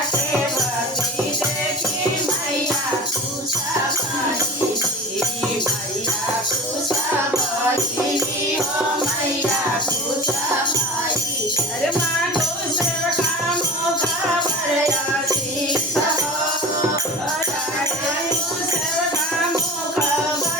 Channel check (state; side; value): normal; both; correlation 0.35